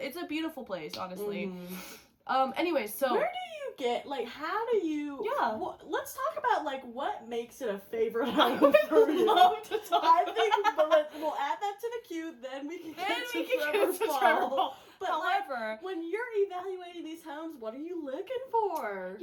It's a beautiful place, honestly. Anyway, so where do you get, like, how do you? Yeah. Let's talk about, like, what makes it a favorite I home would for you. love to talk. I think, but we'll add that to the queue. Then we can get to Trevor Paul. But However, when you're evaluating these homes, what are you looking for?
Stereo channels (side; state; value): both; identical; correlation 1.00